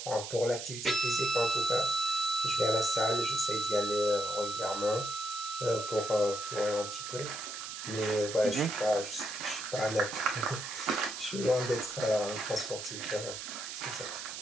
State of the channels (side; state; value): right; noise; hiss, 8 dB below the sound